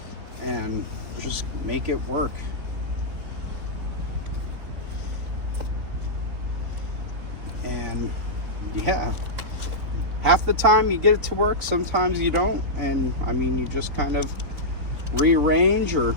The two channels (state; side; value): late; left; 3.9 ms